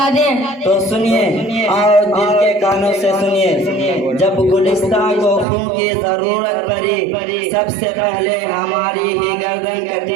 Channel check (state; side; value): drops out; left; at 5.5 s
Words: دیں۔ تو سنیے اور دل کے کانوں سے سنیے، جب گلستان کو خون کی ضرورت پڑی، سب سے پہلے ہماری ہی گردن